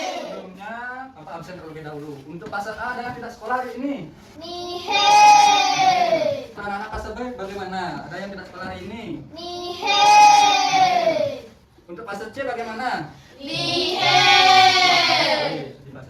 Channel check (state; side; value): identical; both; correlation 1.00